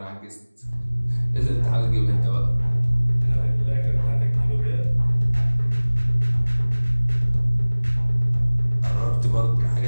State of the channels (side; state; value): both; inverted; correlation -1.00